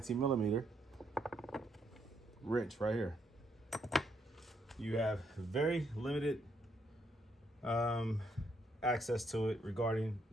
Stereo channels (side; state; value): both; normal; correlation 0.74